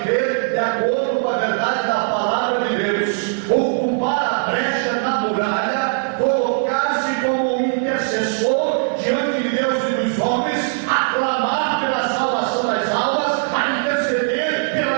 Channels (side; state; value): left; silent; digital silence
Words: de acordo com a verdade da palavra de Deus, ocupar a brecha na muralha, colocar-se como um intercessor diante de Deus e dos homens, aclamar pela salvação das almas, a interceder pela